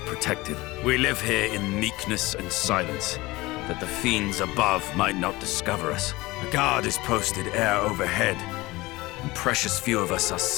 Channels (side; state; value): right; quieter; 20.6 dB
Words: We live here in meekness and silence, that the fiends above might not discover us. A guard is posted air overhead, and precious few of us are